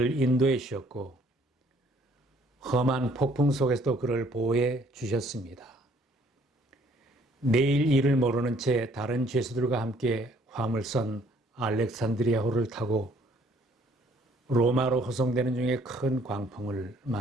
인도해 주셨고 험한 폭풍 속에서도 그를 보호해 주셨습니다. 내일 일을 모르는 채 다른 죄수들과 함께 화물선 알렉산드리아호를 타고 로마로 호송되는 중에 큰 광풍을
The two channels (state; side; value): normal; both; correlation 0.62